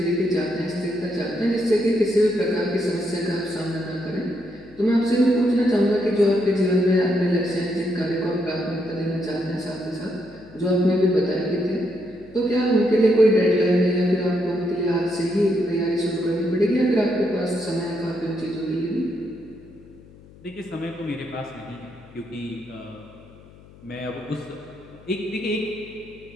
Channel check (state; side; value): noise; left; hum, 23 dB below the sound